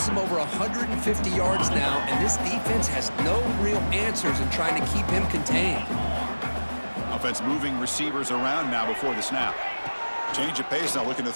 him over 150 yards now, and this defense has no real answers in trying to keep him contained. Offense moving receivers around now before the snap. Change of pace now, looking to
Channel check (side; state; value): both; inverted; correlation -1.00